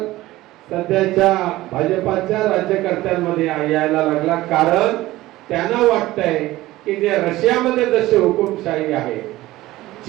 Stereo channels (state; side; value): quieter; left; 17.2 dB